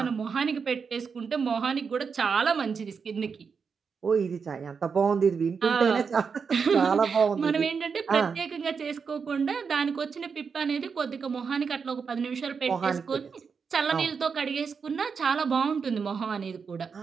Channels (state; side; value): quieter; left; 5.8 dB